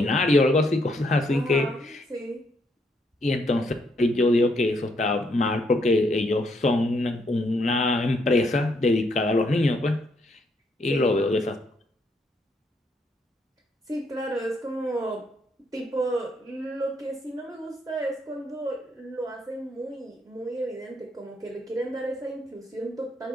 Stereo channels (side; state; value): both; normal; correlation 0.74